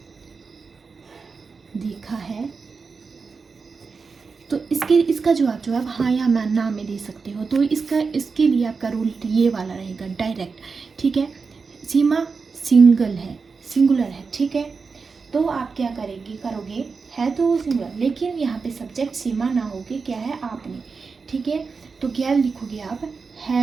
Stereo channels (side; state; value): left; quieter; 4.9 dB